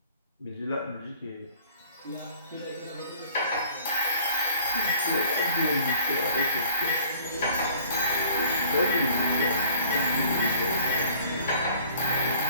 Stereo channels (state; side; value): inverted; both; correlation -0.51